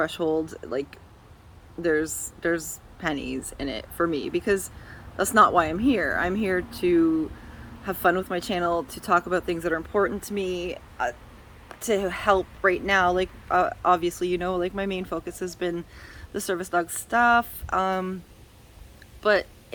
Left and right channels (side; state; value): both; identical; correlation 1.00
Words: Like, there's pennies in it for me, because that's not why I'm here. I'm here to have fun with my channel, to talk about things that are important to me, to help right now. Like, obviously, you know, like, my main focus has been the service dog stuff, but